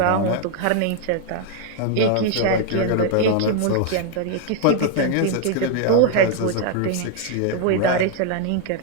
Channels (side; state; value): both; different; correlation 0.00